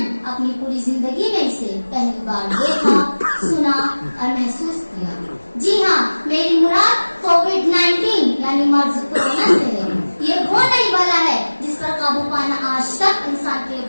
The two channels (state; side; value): inverted; both; correlation -1.00